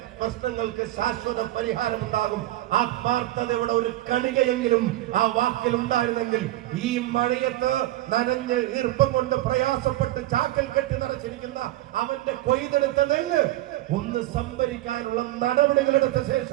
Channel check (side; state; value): left; quieter; 15.9 dB